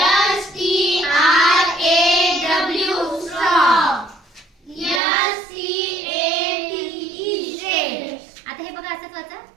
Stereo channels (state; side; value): drops out; left; at 5.0 s